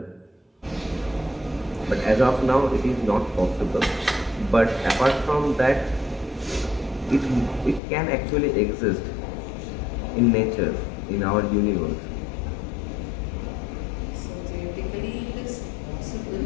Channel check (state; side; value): drops out; right; at 7.8 s